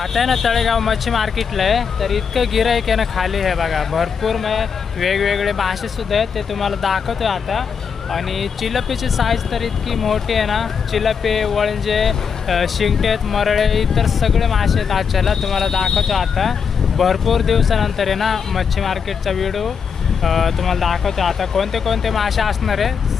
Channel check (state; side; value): quieter; right; 6.4 dB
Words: आहे ना तळेगाव मच्छी मार्केटला आहे, तर इतकं गिराईक आहे ना खाली आहे बघा. भरपूर वेगवेगळे मासे सुद्धा आहेत, ते तुम्हाला दाखवतोय आता. आणि चिलपीची साईज तर इतकी मोठी आहे ना. चिलपी, वळंजे, शिंगटेत, मरळे, इतर सगळे मासे आहेत आजच्याला. तुम्हाला दाखवतो आता. भरपूर दिवसानंतर आहे ना मच्छी मार्केटचा व्हिडिओ तुम्हाला दाखवतो आता. कोणते कोणते मासे असणार